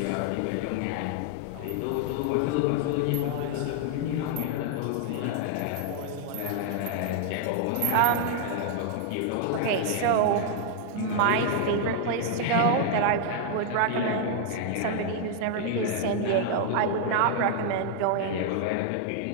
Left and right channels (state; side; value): different; both; correlation 0.00